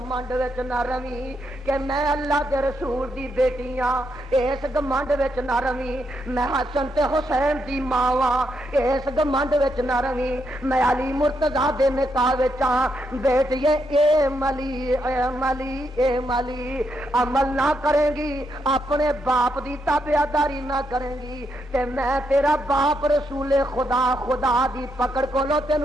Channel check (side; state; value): both; normal; correlation 0.80